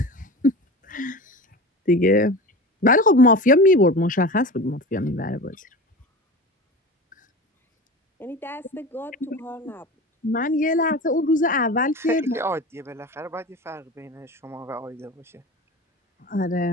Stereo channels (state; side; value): normal; both; correlation 0.32